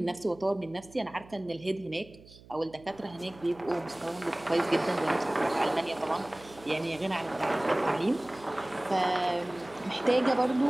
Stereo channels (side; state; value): right; noise; hum, 22 dB below the sound